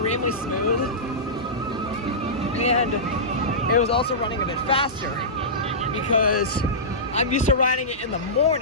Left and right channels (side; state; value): both; normal; correlation -0.17